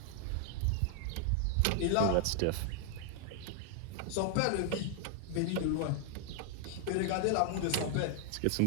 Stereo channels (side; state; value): both; different; correlation 0.00